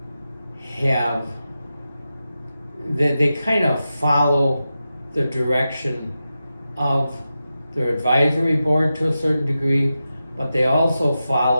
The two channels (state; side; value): inverted; both; correlation -0.91